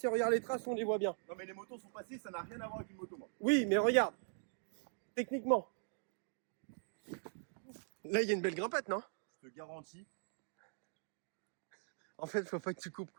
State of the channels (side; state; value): left; silent; digital silence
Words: regarde les traces, on les voit bien. Non, mais les motos sont passées, ça n'a rien à voir avec une moto, moi. Oui, mais regarde. Techniquement. Là, il y a une belle grimpette, non? Je te garantis. En fait, faut pas que tu coupes,